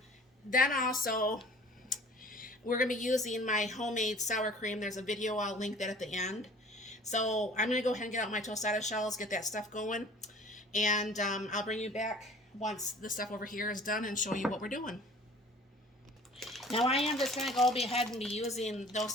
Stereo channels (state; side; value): normal; both; correlation 0.47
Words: then also, we're going to be using my homemade sour cream. There's a video, I'll link that at the end. So I'm going to go ahead and get out my tostada shells, get that stuff going. And I'll bring you back once the stuff over here is done and show you what we're doing. Now I am just going to go ahead and be using